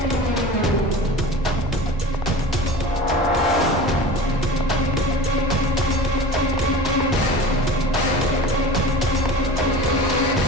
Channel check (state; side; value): normal; both; correlation 0.36